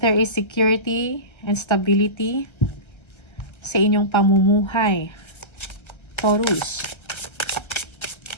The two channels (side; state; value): right; late; 1.3 ms